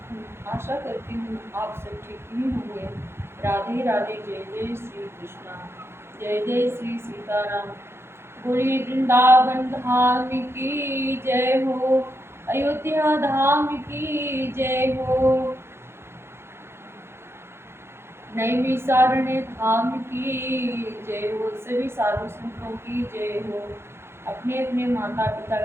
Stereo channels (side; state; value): left; late; 0.12 ms